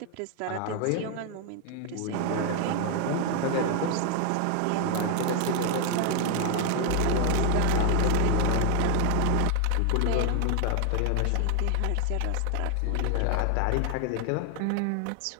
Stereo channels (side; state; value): both; different; correlation 0.00